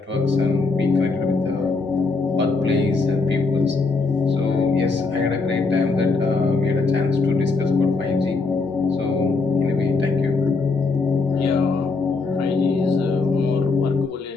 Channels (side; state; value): right; quieter; 4.0 dB